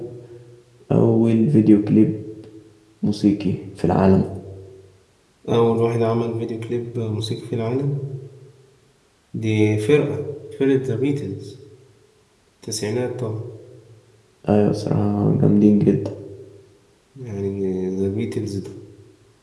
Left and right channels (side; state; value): both; identical; correlation 1.00